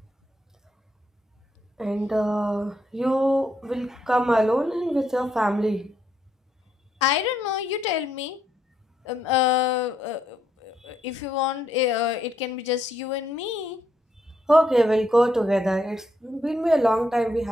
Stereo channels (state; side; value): normal; both; correlation 0.75